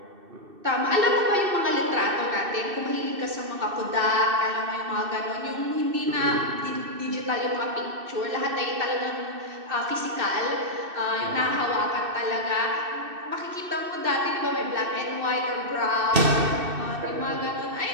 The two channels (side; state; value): left; late; 2.6 ms